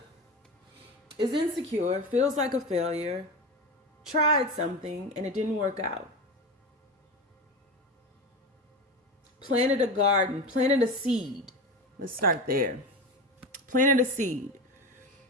is insecure, feels like a failure, tried something and it didn't work out. Planted a garden, planted a seed. Let's start there. Planted a seed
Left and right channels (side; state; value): both; normal; correlation 0.23